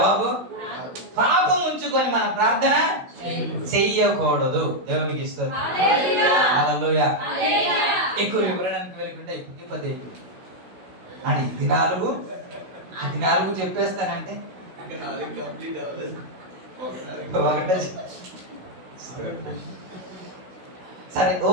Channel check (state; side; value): late; left; 16 ms